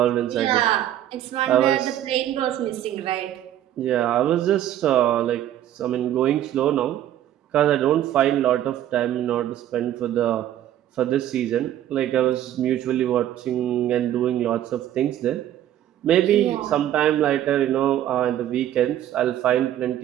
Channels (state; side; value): quieter; left; 11.9 dB